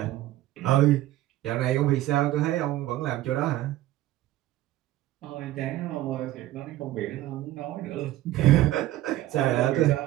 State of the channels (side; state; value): left; quieter; 15.1 dB